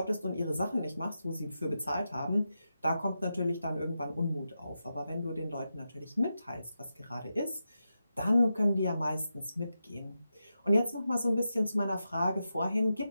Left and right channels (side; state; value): both; inverted; correlation -0.89